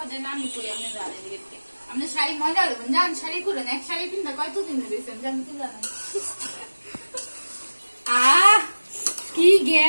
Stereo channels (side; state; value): both; inverted; correlation -1.00